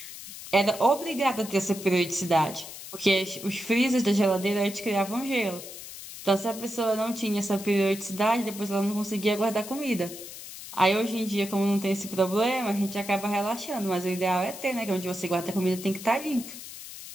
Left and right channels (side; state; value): left; noise; hiss, 12 dB below the sound